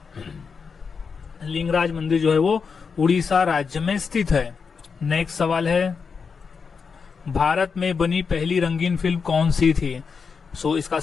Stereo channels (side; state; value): right; quieter; 5.6 dB